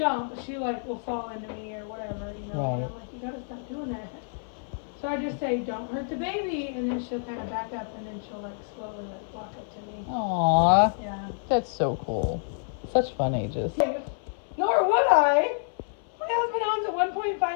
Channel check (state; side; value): silent; right; 57 dB below the other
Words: but she like will fall into me or whatever, you know. Right. And I'm like, you gotta stop doing that. So I just say, don't hurt the baby, and then she'll kind of back up, and then she'll like slowly like walk up to me. Aww. Yeah. That's so cool. Such fun ages. Nor would I. My husband owns a